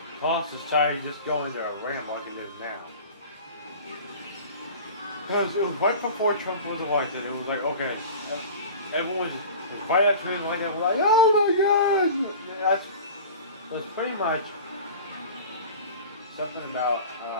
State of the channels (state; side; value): inverted; both; correlation -0.38